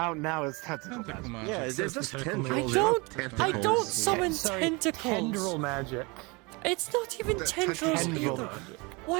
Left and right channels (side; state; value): left; quieter; 27.4 dB